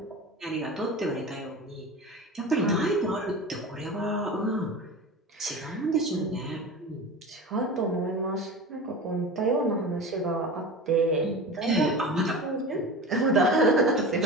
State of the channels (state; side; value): normal; both; correlation 0.31